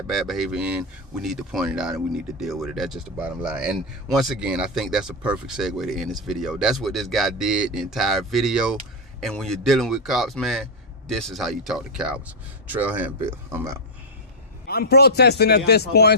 bad behavior in, we need to point it out and we need to deal with it. That's just the bottom line. And once again, I think that's a perfect segue to end this video. That's what this guy did the entire video. And when you're dealing with cops, man, this is how you talk to cowards. Trailhand Bill, I'm out. I'm protesting at this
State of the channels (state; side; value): normal; both; correlation -0.03